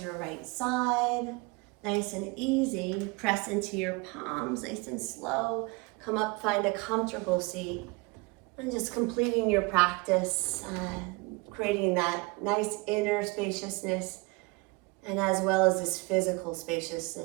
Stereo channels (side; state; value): left; quieter; 26.8 dB